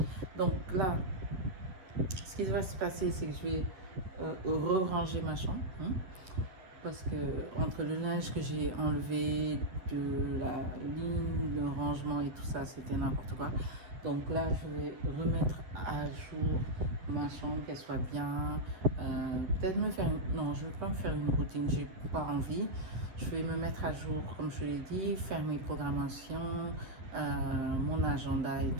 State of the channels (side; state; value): left; late; 11 ms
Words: Donc là, ce qui va se passer, c'est que je vais re-ranger ma chambre. Hein, parce que entre le linge que j'ai enlevé de la ligne de rangement et tout ça, c'était n'importe quoi. Donc là, je vais remettre à jour ma chambre, qu'elle soit bien. Peut-être me faire... Non, je ne vais pas me faire une routine, j'ai pas envie. Je vais me mettre à jour, comme je l'ai dit, faire mes programmations, mon agenda et